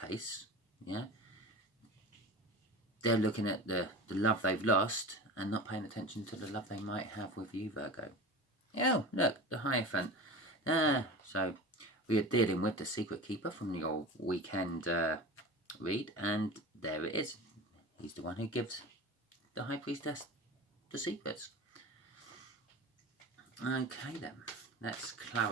yeah, they're looking at the love they've lost and not paying attention to the love they might have with you, Virgo. Oh, look, the Hierophant. So we are dealing with the Secret Keeper from your weekend read, and there it is. He's the one who gives the High Priestess the secrets. Okay then, let's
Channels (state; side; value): normal; both; correlation 0.32